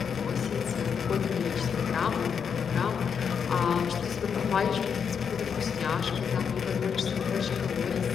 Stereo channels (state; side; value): quieter; right; 6.9 dB